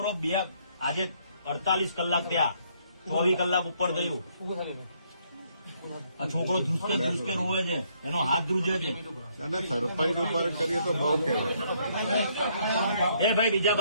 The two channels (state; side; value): inverted; both; correlation -0.69